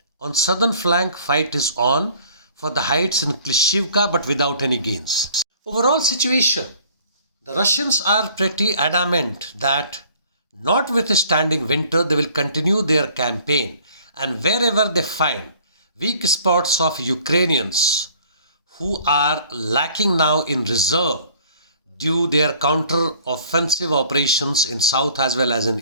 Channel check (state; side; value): inverted; both; correlation -0.53